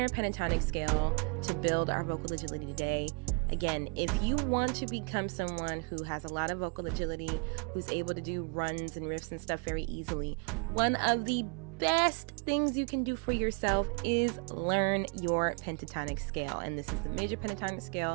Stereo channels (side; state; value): left; quieter; 37.3 dB